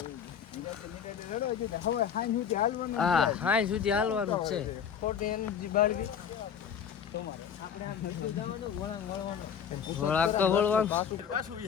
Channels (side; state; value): right; quieter; 7.8 dB